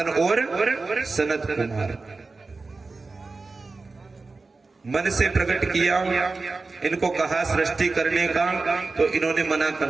और सनत कुमार। मन से प्रकट किया, इनको कहा सृष्टि करने का, तो इन्होंने मना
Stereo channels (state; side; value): quieter; left; 3.8 dB